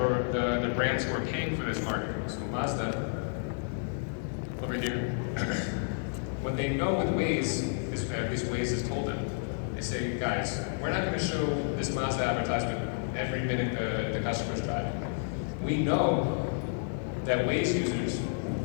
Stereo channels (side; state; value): right; silent; digital silence